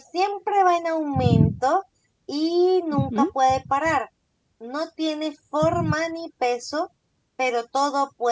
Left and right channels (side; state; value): both; identical; correlation 1.00